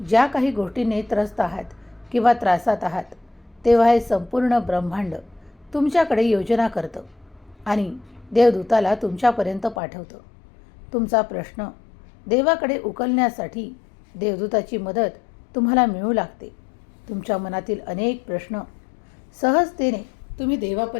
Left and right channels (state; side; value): drops out; right; at 9.8 s